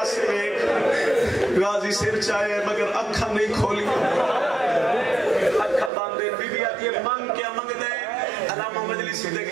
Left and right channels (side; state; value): left; drops out; at 5.9 s